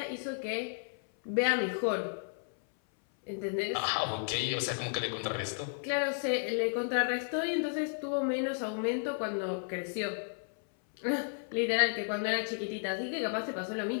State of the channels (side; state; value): right; silent; 56 dB below the other